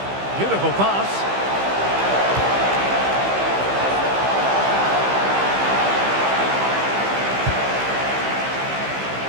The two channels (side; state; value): left; late; 15 ms